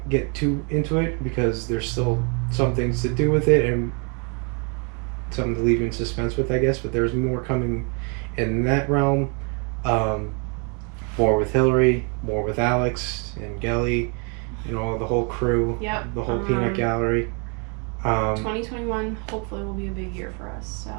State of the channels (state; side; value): quieter; left; 35.9 dB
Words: get too into it because there's still some things to do with it and something to leave in suspense with, I guess, but there's more coming in that realm. More with Hillary, more with Alex and Gelly, the whole crew. Yep. The whole peanut gallery. 2021 hopefully will be a big year for us. So